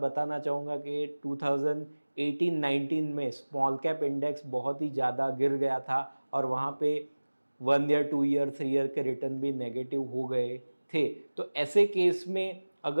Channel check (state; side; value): inverted; both; correlation -1.00